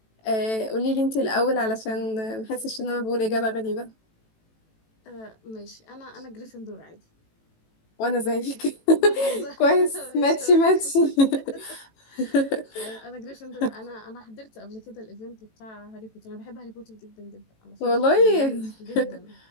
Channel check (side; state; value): right; late; 18 ms